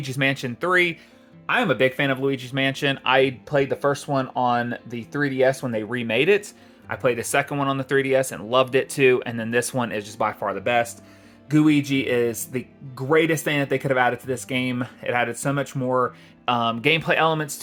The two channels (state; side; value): identical; both; correlation 1.00